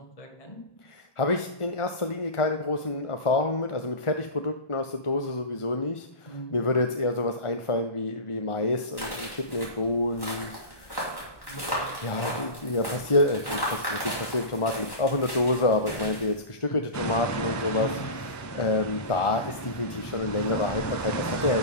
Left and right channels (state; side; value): late; right; 1.2 ms